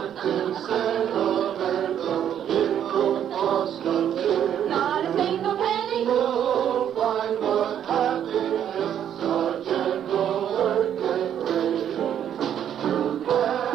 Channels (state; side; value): quieter; left; 9.7 dB